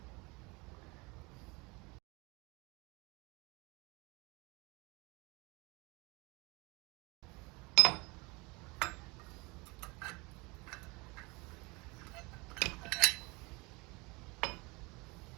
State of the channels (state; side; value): quieter; left; 25.8 dB